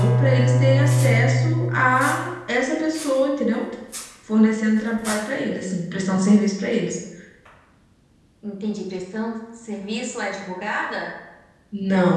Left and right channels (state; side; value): identical; both; correlation 1.00